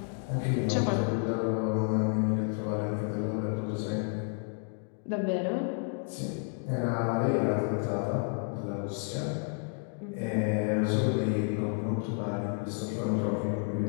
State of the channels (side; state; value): right; quieter; 39.8 dB